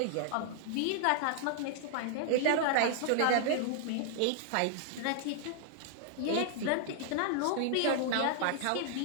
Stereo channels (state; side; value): different; both; correlation -0.01